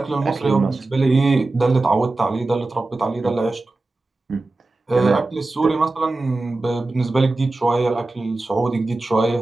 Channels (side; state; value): left; quieter; 3.1 dB